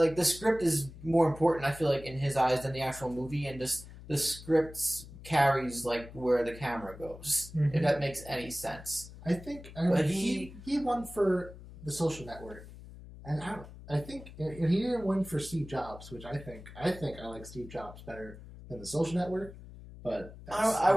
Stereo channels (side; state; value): left; noise; hum, 16 dB below the sound